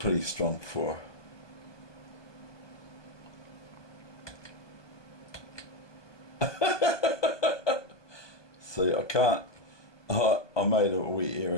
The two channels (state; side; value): late; right; 1.2 ms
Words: strong for see, I can't I made a wee